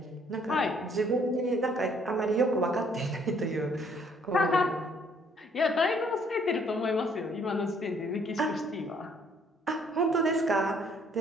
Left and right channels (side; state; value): both; normal; correlation 0.63